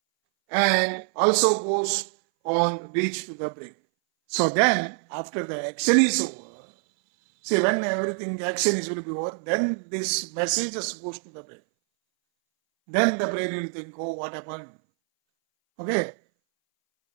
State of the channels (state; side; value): silent; left; 60 dB below the other